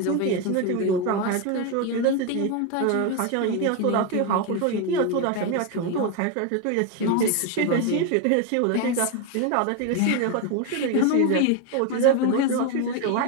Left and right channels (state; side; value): different; both; correlation 0.02